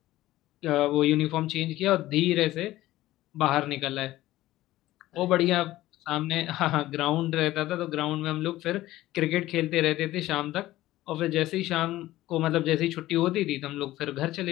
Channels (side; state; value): right; quieter; 16.0 dB